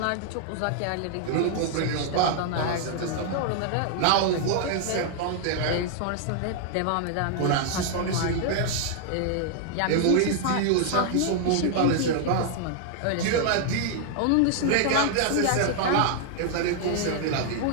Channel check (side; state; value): both; different; correlation 0.00